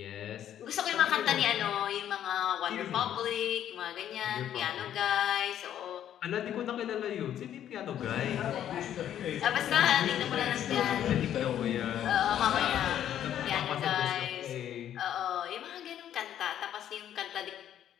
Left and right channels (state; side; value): quieter; right; 10.7 dB